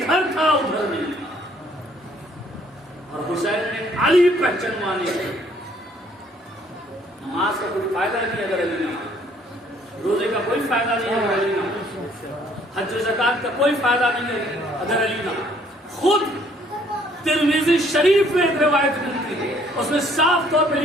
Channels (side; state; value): both; normal; correlation 0.62